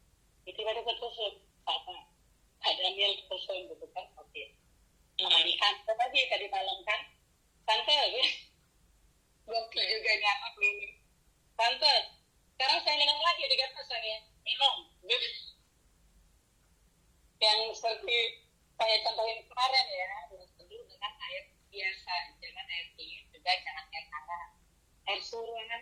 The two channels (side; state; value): both; identical; correlation 1.00